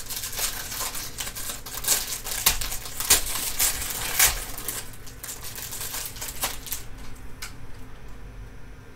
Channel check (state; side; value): identical; both; correlation 1.00